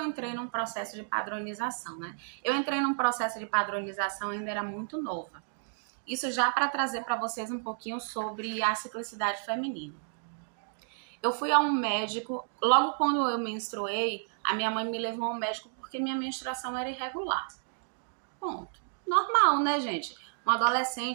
entrei num processo de padronização, né? Eu entrei num processo de padronização, ainda era muito nova. Isso já para trazer para vocês um pouquinho sobre a ciclicidade feminina. Eu fui a um médico, logo quando eu menstruei, a minha mãe me levou a um médico porque minha menstruação era irregular. Ponto. Normal, né, gente? Uma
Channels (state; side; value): silent; left; digital silence